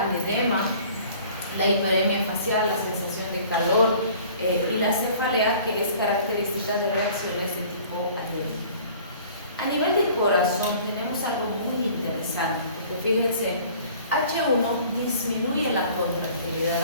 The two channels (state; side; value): inverted; both; correlation -0.50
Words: edema, la hiperemia facial, la sensación de calor y la cefalea, que es característica de reacciones de tipo alérgico. A nivel de corazón tenemos algo muy interesante, porque fíjense, H1 disminuye la